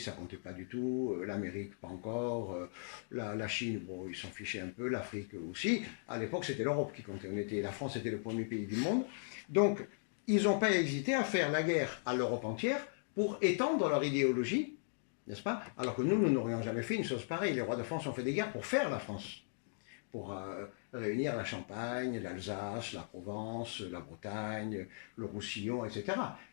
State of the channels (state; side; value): silent; right; digital silence